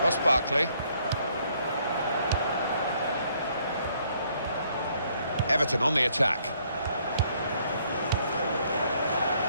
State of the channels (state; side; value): inverted; both; correlation -0.67